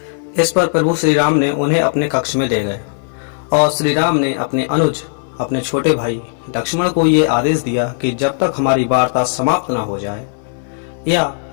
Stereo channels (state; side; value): silent; right; digital silence